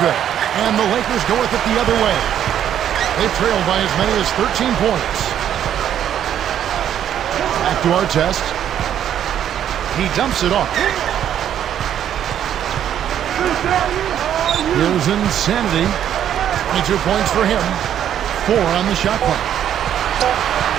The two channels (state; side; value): quieter; left; 10.1 dB